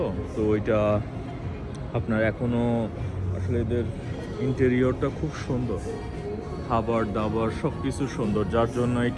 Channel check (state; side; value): identical; both; correlation 1.00